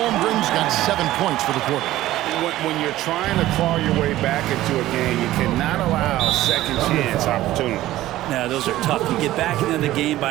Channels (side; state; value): left; quieter; 15.2 dB